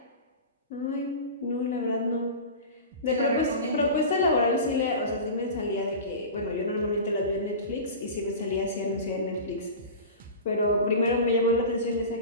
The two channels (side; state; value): both; inverted; correlation -0.31